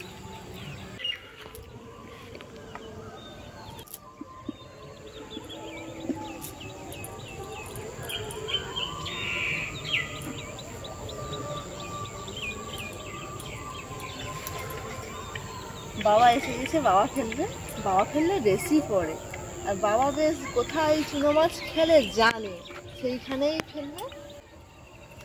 বাবা এসে গেছে, বাবা ফেললে বেশি পড়ে। আর বাবা বেশ কোথায় চুনো মাছ খেলে জানে, সেইখানেই ফেলবে।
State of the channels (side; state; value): both; identical; correlation 1.00